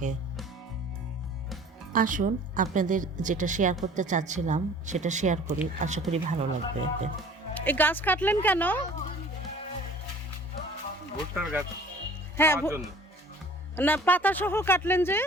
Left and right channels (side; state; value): both; normal; correlation 0.48